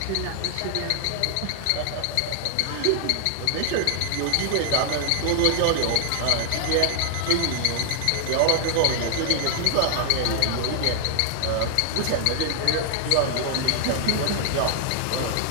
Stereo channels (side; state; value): both; different; correlation 0.00